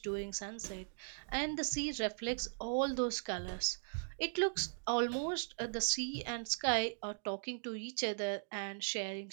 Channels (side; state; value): left; silent; digital silence